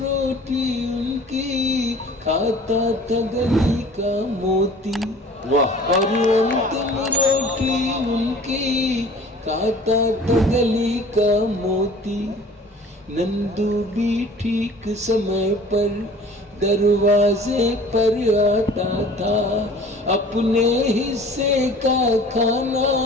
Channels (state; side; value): normal; both; correlation 0.47